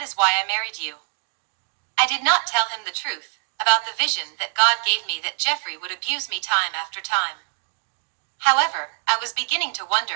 is why I married you." I did not tell him the truth about the vision that God gave me that Jeffrey would abuse me time after time. However, I was beginning to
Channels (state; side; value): silent; left; digital silence